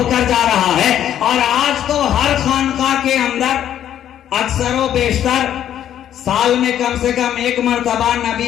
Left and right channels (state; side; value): quieter; right; 10.7 dB